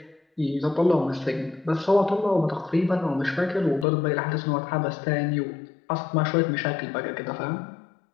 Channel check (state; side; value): drops out; right; at 3.9 s